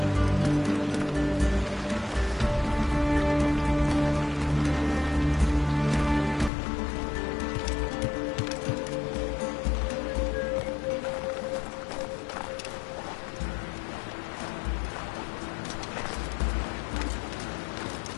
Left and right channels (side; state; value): right; drops out; at 6.5 s